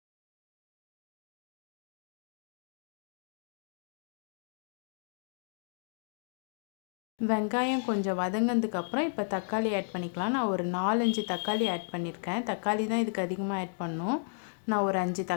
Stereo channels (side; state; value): right; silent; digital silence